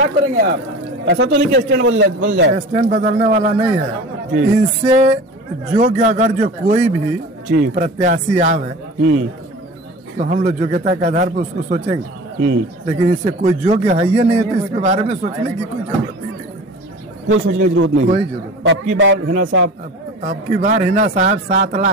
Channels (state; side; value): normal; both; correlation 0.37